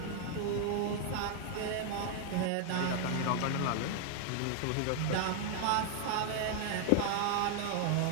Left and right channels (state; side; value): different; both; correlation 0.00